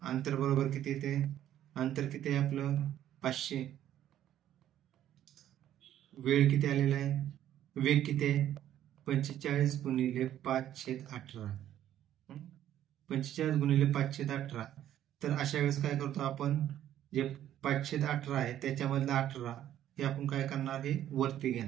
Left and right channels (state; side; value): quieter; left; 11.7 dB